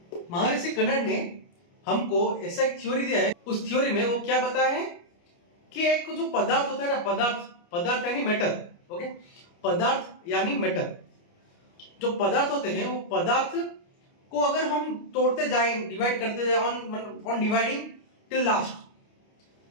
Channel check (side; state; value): right; late; 29 ms